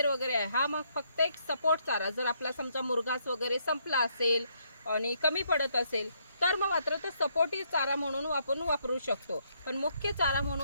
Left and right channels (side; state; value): both; inverted; correlation -0.72